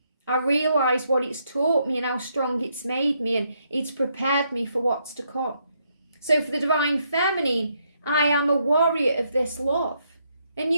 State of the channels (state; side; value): inverted; both; correlation -0.76